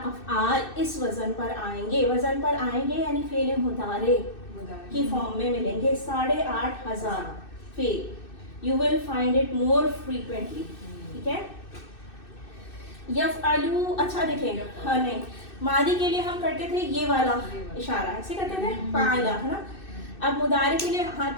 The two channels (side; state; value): right; late; 2.6 ms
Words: अफ़आल इस वजन पर आएंगे, यानी फेल मुदारे की फॉर्म में मिलेंगे 8,500 fail. You will find it more frequently, ठीक है। यफ़अलू, अच्छा देखें, हाँ नहीं, मादी के लिए हम करते थे ये वाला इशारा, ऐसे करते थे फ़अला, है ना। अब मुदारे के लिए हाथ